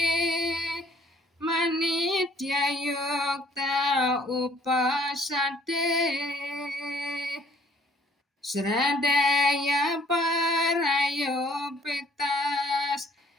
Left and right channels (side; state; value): both; normal; correlation 0.59